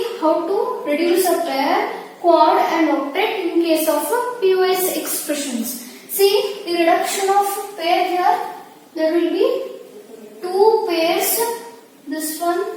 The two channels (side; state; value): both; identical; correlation 1.00